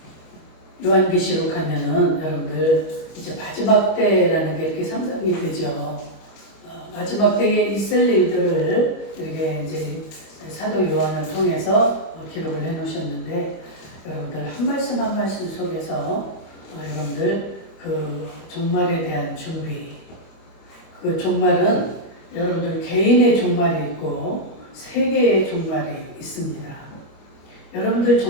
요한계시록 하면은 여러분들 이제 마지막 때라는 게 이렇게 상상이 되죠. 마지막 때에 있을 일들을 이렇게 이제 사도 요한을 통해서 기록을 해 놓으셨는데, 여러분들 한 말씀 한 말씀 속에서 여러분들 그 종말에 대한 준비, 그 종말은 여러분들 개인의 종말이 있고 세계의 종말이 있습니다. 여러분들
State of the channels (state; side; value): late; right; 26 ms